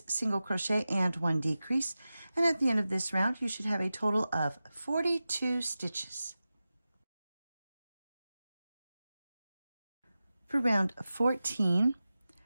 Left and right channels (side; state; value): both; inverted; correlation -0.94